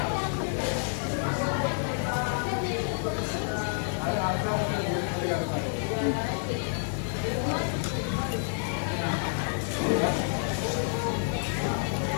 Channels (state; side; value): silent; right; 59 dB below the other